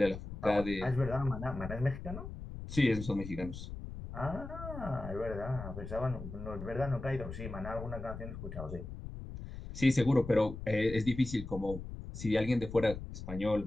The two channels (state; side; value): noise; left; rumble, 9 dB below the sound